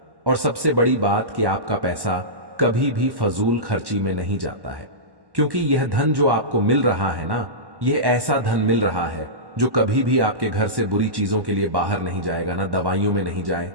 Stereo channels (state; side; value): late; left; 1.1 ms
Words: और सबसे बड़ी बात कि आपका पैसा कभी भी फजूल खर्ची में नहीं जाता है, क्योंकि यह धन जो आपको मिल रहा है ना, यह ऐसा धन मिल रहा है जो कभी भी आपके घर से बुरी चीजों के लिए बाहर नहीं जाएगा, ना दवाइयों में